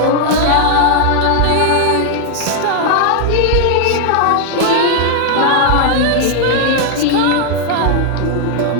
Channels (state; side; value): different; both; correlation 0.00